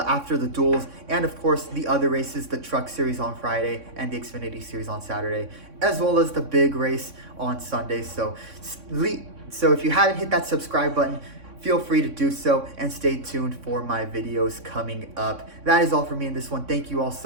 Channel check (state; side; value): late; left; 3.6 ms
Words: the duels, and of course the other races, the Truck Series on Friday and the Xfinity Series on Saturday, as well as the big race on Sunday. So if you haven't hit that subscribe button, feel free to do so, and stay tuned for my videos coming up. That is all for me in this one. Thank you all